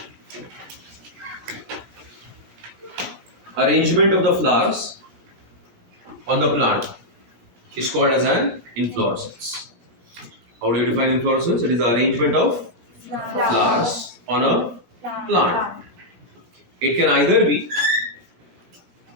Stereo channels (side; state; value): left; late; 17 ms